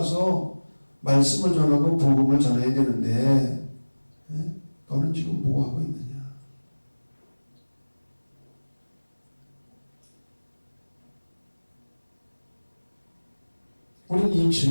말씀을 전하고 복음을 전해야 되는데 너는 지금 뭐 하고 있느냐. 우리는 이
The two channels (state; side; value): inverted; both; correlation -1.00